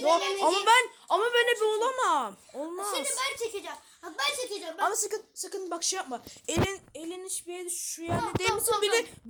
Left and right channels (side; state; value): both; identical; correlation 1.00